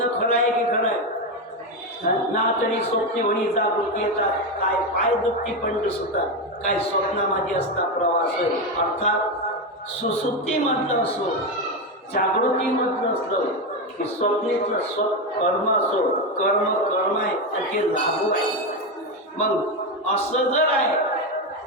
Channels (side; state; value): both; normal; correlation 0.11